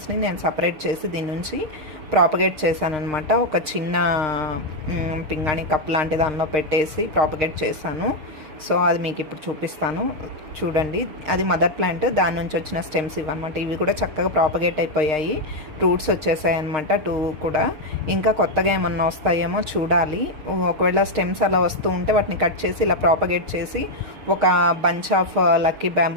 నేను సపరేట్ చేసి దీని నుంచి ప్రాపగేట్ చేశానమాట. ఒక చిన్న పింగాణి కప్ లాంటి దానిలో పెట్టేసి ప్రాపగేట్ చేశాను. సో అది మీకు ఇప్పుడు చూపిస్తాను, చూడండి. అది మదర్ ప్లాంట్, దాని నుంచి వచ్చిన స్టెమ్స్ ఇవన్నమాట. ఇవి కూడా చక్కగా ప్రాపగేట్ అయిపోయాయి, రూట్స్ వచ్చేసాయి అనమాట 2 కూడా. ఇంకా కొత్తగా ఏమన్నా వస్తాయేమో చూడాలి. ఒకవేళ స్టెమ్స్ అలా వస్తూ ఉంటే వాటిని కట్ చేసి ఇలా ప్రాపగేట్ చేసి ఒక బంచ్ ఆఫ్ లక్కీ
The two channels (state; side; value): late; left; 6.5 ms